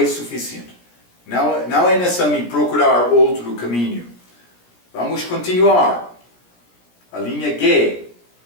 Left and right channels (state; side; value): late; right; 17 ms